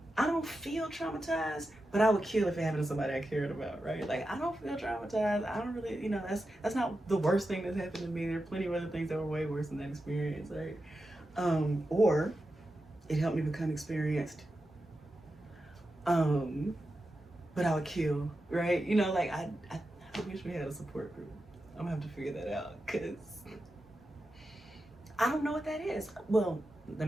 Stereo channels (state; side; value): normal; both; correlation 0.90